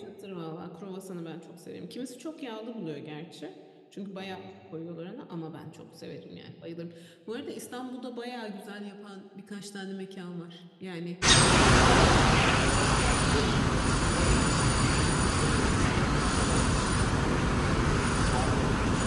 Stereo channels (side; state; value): both; identical; correlation 1.00